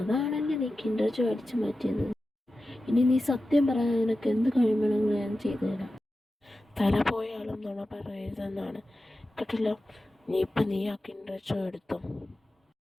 നീ കിൻഡർ ജോയ് അടിച്ചു മാറ്റിയത്. ഇനി നീ സത്യം പറയാൻ നിനക്ക് എന്ത് കഴിയണമെങ്കിലും ഞാൻ ചെയ്തു തരാം. തല പോയാലും നുണ പറയരുതെന്നാണ് കേട്ടല്ലോ. നീ ആ കിൻഡർ ജോയ് എടുത്തോ.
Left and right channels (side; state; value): both; normal; correlation 0.93